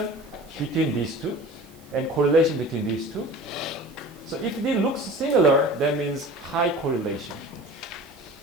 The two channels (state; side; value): noise; right; hiss, 27 dB below the sound